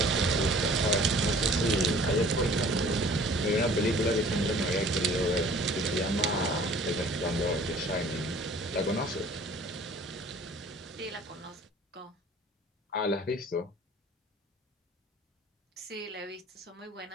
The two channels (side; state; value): both; normal; correlation 0.51